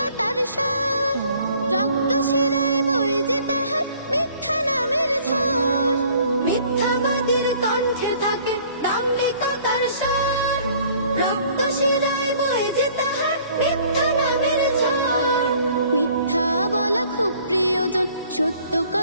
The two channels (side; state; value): both; inverted; correlation -0.56